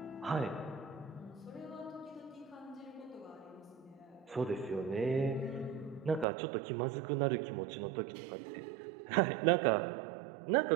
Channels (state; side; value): drops out; left; at 6.2 s